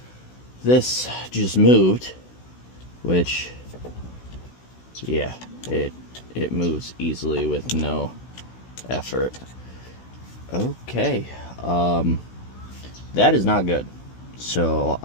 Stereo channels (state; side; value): late; right; 16 ms